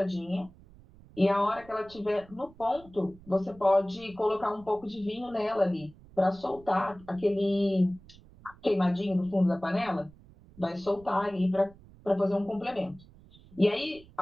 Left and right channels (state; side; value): noise; right; rumble, 23 dB below the sound